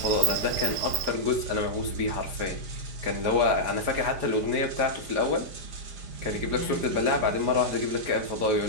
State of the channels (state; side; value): late; left; 4.9 ms